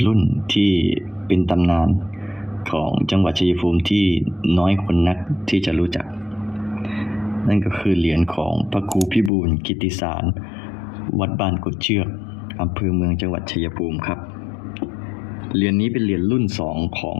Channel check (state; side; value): drops out; right; at 9.3 s